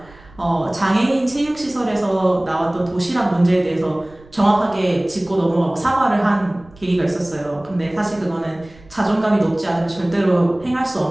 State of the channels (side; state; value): right; noise; rumble, 24 dB below the sound